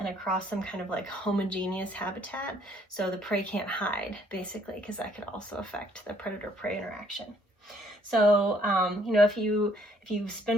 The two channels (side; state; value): both; normal; correlation 0.65